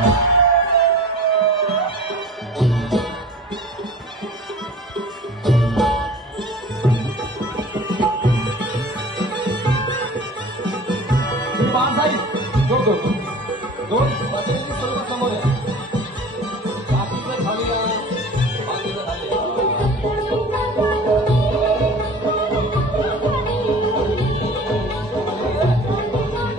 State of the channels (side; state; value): both; normal; correlation 0.42